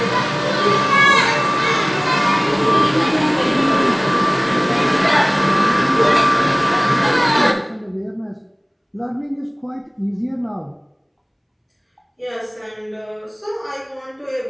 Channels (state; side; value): identical; both; correlation 1.00